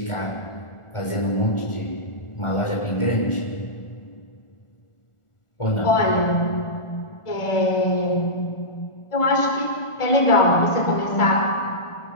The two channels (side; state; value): right; late; 1.4 ms